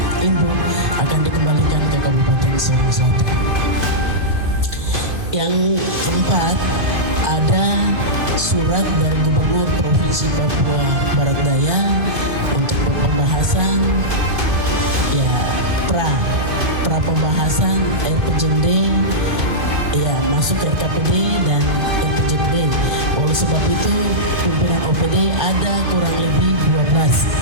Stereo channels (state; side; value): late; left; 2.5 ms